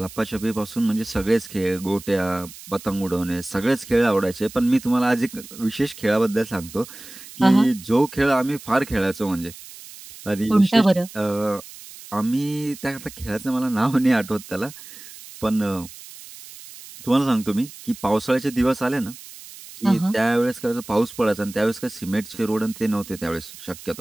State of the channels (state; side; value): noise; right; hiss, 17 dB below the sound